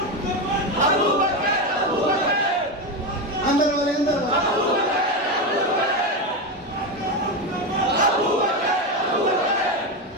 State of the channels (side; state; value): both; normal; correlation 0.14